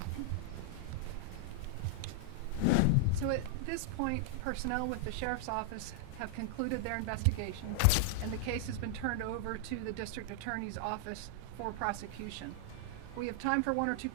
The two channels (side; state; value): both; different; correlation -0.01